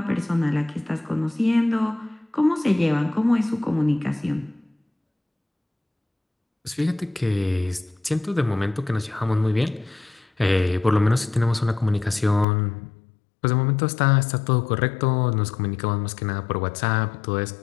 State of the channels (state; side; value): drops out; right; at 12.5 s